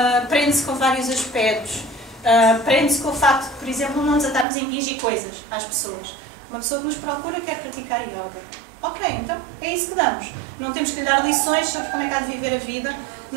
prende-se com vários aspectos. Prende-se com o facto de, por exemplo, não nos atarmos a impingir coisas às pessoas. Uma pessoa que nos procura quer praticar yoga. Ok, então é isso que damos. Não temos que lhe dar lições sobre como é que há de viver a vida,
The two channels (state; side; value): drops out; left; at 4.5 s